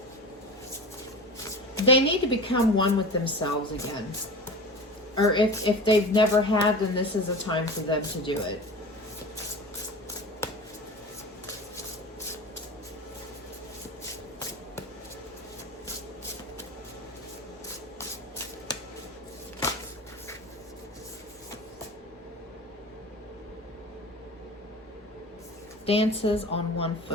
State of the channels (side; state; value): both; normal; correlation 0.33